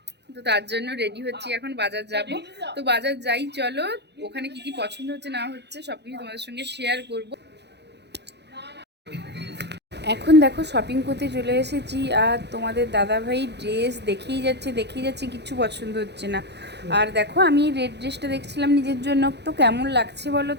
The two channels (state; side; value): late; left; 0.50 ms